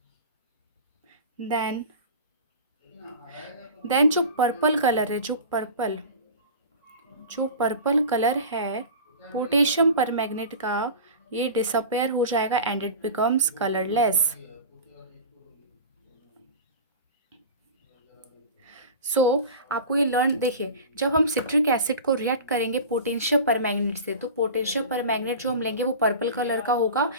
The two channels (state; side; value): inverted; both; correlation -0.34